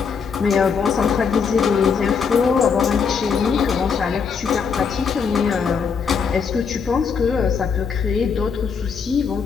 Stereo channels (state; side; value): quieter; right; 6.0 dB